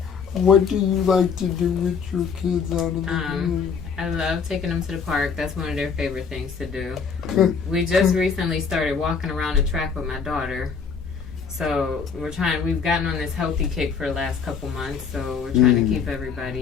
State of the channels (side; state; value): right; quieter; 6.0 dB